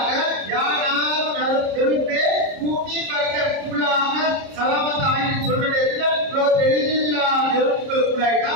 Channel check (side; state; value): left; late; 30 ms